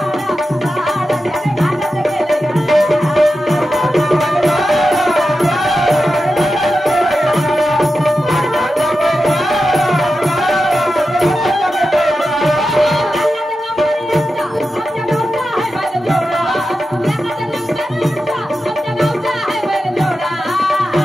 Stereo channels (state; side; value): normal; both; correlation 0.91